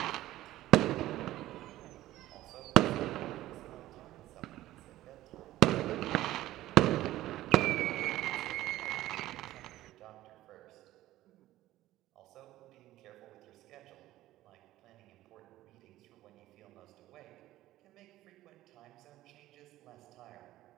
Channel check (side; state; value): left; quieter; 15.3 dB